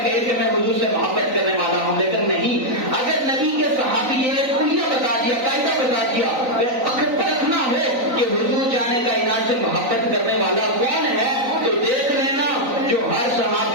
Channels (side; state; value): left; late; 3.9 ms